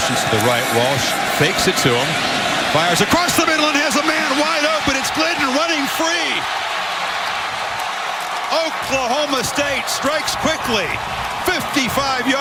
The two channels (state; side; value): identical; both; correlation 1.00